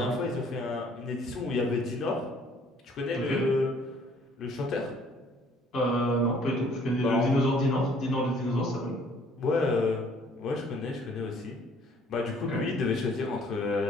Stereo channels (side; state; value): both; normal; correlation 0.59